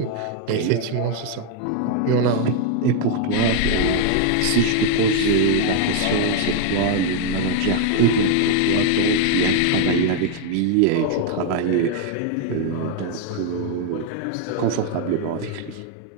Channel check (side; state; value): both; different; correlation 0.00